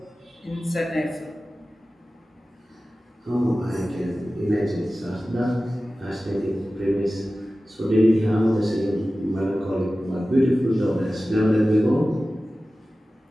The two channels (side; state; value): both; normal; correlation 0.96